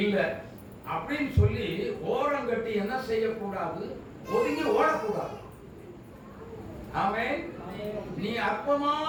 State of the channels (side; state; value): both; identical; correlation 1.00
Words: அப்படின்னு சொல்லி ஓரம் கட்டி என்ன செய்யக்கூடாது? ஒதுங்கி ஓடக்கூடாது. ஆமென். நீ